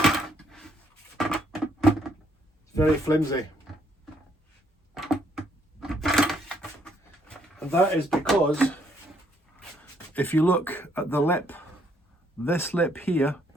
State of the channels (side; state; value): both; normal; correlation 0.70